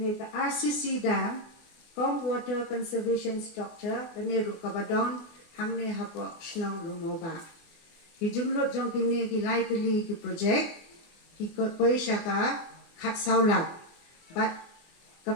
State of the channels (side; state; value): right; late; 24 ms